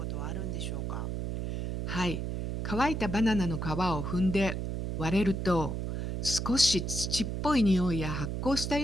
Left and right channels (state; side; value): noise; right; hum, 3 dB below the sound